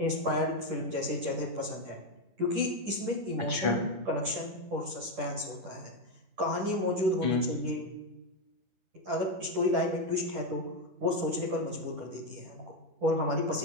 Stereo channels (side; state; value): left; late; 10 ms